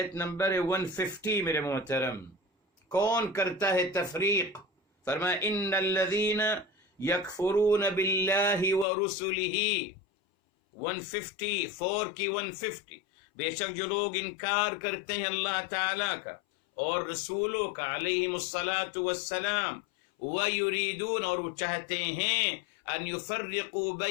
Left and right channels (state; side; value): drops out; right; at 8.8 s